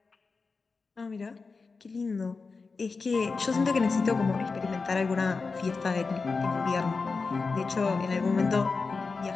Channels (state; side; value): quieter; right; 4.4 dB